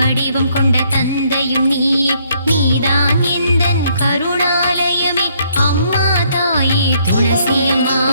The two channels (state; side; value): inverted; both; correlation -0.68